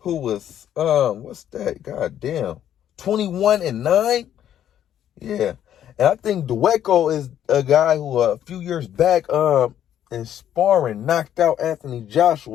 who was, 21-9. Yeah. And I think Dueco is a guy who a few years back in sparring knocked out Anthony Joshua.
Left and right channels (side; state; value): right; quieter; 10.5 dB